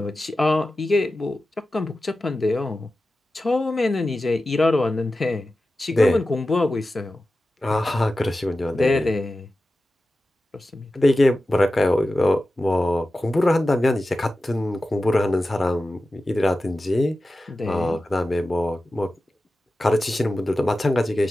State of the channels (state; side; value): normal; both; correlation 0.94